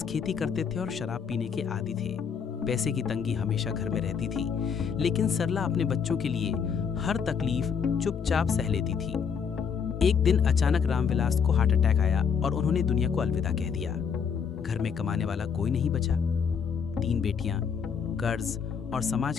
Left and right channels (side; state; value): right; quieter; 6.6 dB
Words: खेती करते थे और शराब पीने के आदी थे। पैसे की तंगी हमेशा घर में रहती थी, लेकिन सरला अपने बच्चों के लिए हर तकलीफ चुपचाप सह लेती थी। एक दिन अचानक रामविलास को हार्ट अटैक आया और उन्होंने दुनिया को अलविदा कह दिया। घर में कमाने वाला कोई नहीं बचा। 3 बेटियां, कर्ज और समाज